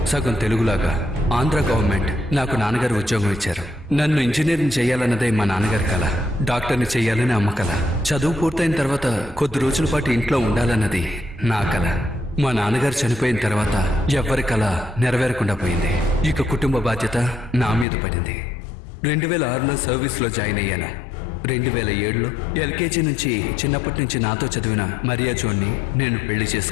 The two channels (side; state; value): right; drops out; at 17.9 s